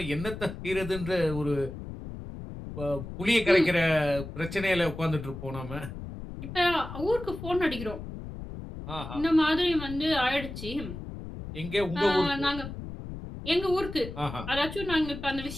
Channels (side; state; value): left; noise; rumble, 10 dB below the sound